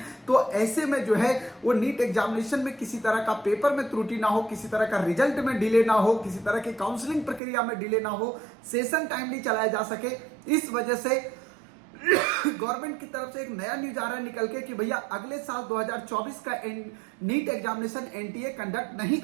तो ऐसे में जो है वो नीट एग्जामिनेशन में किसी तरह का पेपर में त्रुटि ना हो, किसी तरह का रिजल्ट में डिले ना हो, किसी तरह की काउंसलिंग प्रक्रिया में डिले ना हो, सेशन टाइमली चलाया जा सके। इस वजह से गवर्नमेंट की तरफ से एक नया न्यूज आ रहा है निकल के कि भैया अगले साल 2024 का नीट एग्जामिनेशन एनटीए कंडक्ट नहीं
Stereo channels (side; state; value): left; drops out; at 7.4 s